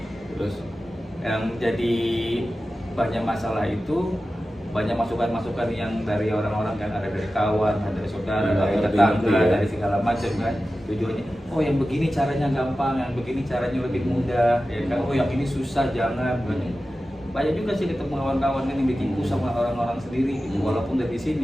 Terus Yang jadi banyak masalah itu banyak masukan-masukan yang dari orang-orang kan, ada dari kawan, ada dari saudara, Iya, dari ngerti, tetangga, ya. dari segala macam kan. Tujuannya, oh yang begini caranya gampang, yang begini caranya lebih mudah, ya kan. Oh yang ini susah, jangan. banyak juga sih ketemu kawan-kawan yang ditipu sama orang-orang sendiri gitu, walaupun dari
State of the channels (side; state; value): both; normal; correlation 0.94